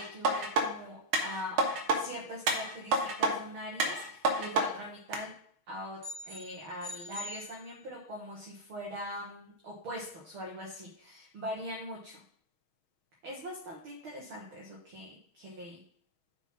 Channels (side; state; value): left; late; 6.3 ms